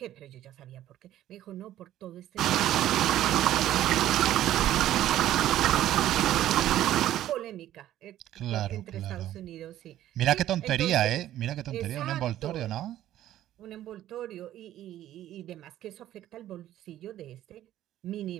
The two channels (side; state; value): left; quieter; 13.0 dB